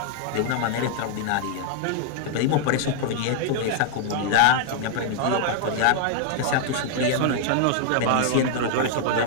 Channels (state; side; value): different; both; correlation -0.01